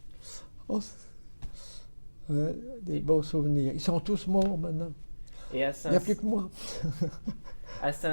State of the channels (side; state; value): both; inverted; correlation -1.00